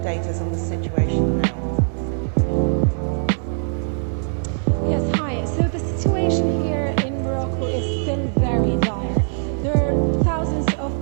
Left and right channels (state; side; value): silent; left; 63 dB below the other